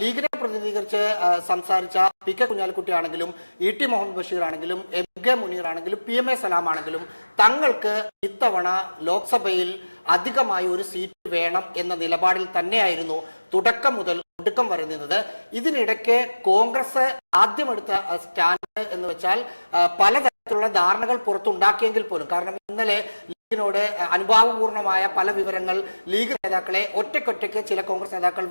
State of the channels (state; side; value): inverted; both; correlation -1.00